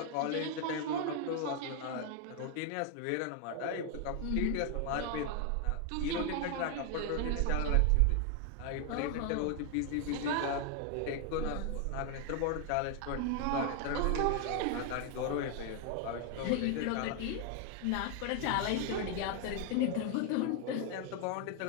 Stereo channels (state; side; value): different; both; correlation 0.00